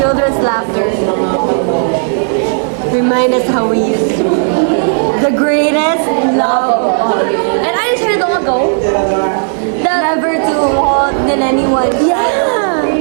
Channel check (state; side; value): silent; left; digital silence